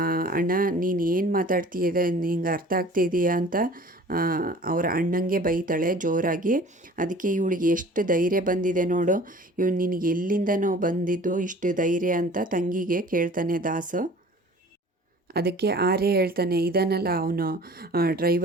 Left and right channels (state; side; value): normal; both; correlation 0.46